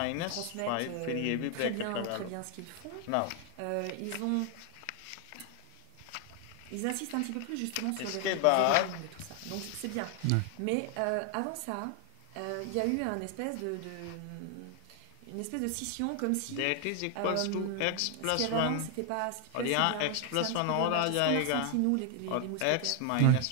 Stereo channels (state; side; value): different; both; correlation 0.01